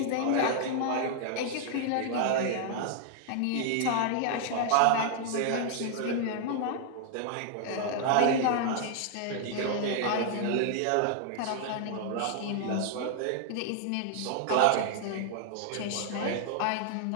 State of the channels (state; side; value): different; both; correlation 0.00